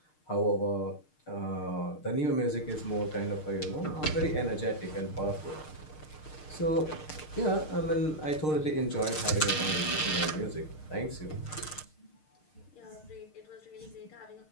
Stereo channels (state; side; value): late; right; 6.5 ms